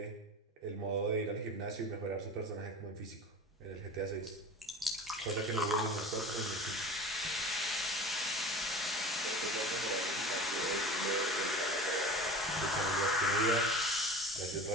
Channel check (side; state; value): both; normal; correlation 0.37